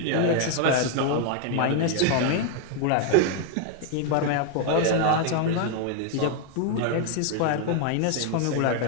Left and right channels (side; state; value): both; different; correlation 0.00